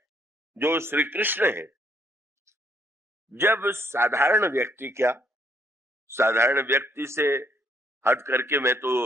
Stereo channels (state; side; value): normal; both; correlation 0.69